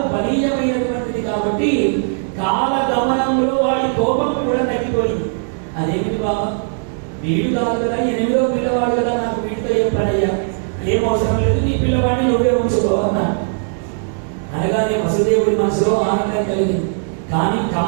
బలీయమైనటువంటిది కాబట్టి కాల గమనంలో వాడి కోపం కూడా తగ్గిపోయింది. అదేమిటి బాబా, వీడు కాదు కదా, 8వ పిల్లవాడు కదా, నాకు వీడితో ఏం పనయ్యా, ఏం అవసరం లేదు, నీ పిల్లవాడిని నువ్వే ఉంచుకో అన్నాడు. అనగానే వసుదేవుడి మనసులో ఆనందం కలిగింది. కానీ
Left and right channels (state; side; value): silent; left; digital silence